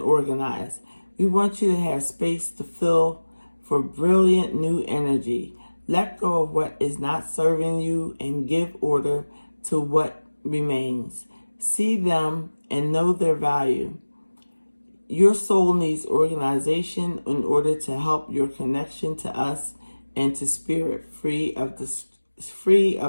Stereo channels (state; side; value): inverted; both; correlation -1.00